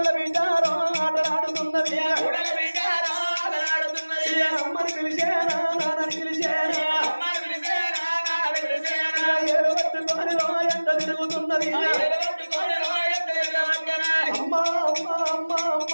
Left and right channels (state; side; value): inverted; both; correlation -1.00